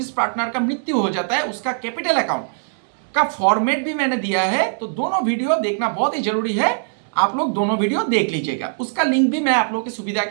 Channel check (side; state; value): left; silent; digital silence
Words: पार्टनर का मृत्यु हो जाता है, उसका कैपिटल अकाउंट का फॉर्मेट भी मैंने दिया है। तो दोनों वीडियो देखना बहुत ही जरूरी है। आप लोग दोनों वीडियो देख लीजिएगा। उसका लिंक भी मैं आप लोगों की सुविधा